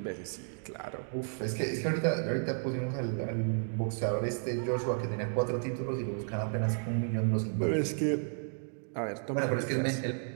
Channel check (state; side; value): silent; left; 56 dB below the other